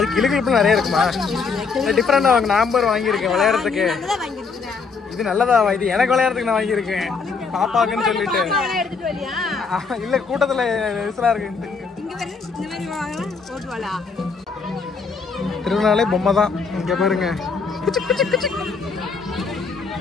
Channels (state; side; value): quieter; right; 5.0 dB